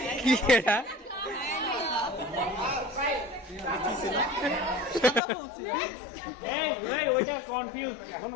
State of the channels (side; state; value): right; drops out; at 5.2 s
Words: কি এটা? এই ওইটা কনফিউজ, এখনো